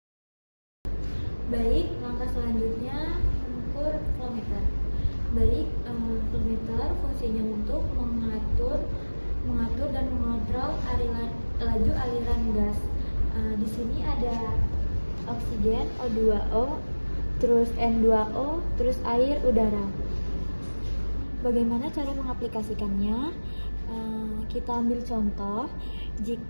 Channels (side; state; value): both; inverted; correlation -1.00